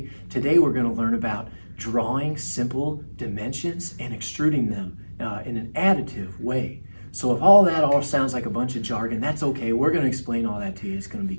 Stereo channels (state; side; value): inverted; both; correlation -1.00